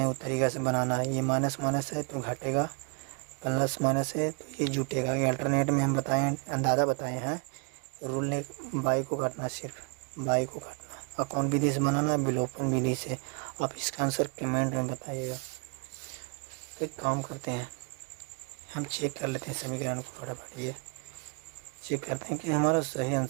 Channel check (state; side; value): quieter; left; 35.5 dB